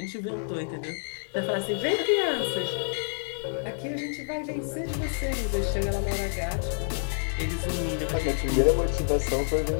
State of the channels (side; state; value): right; silent; 59 dB below the other